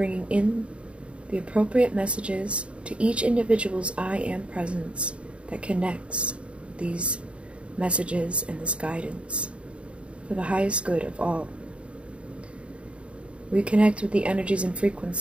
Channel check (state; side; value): late; left; 0.059 ms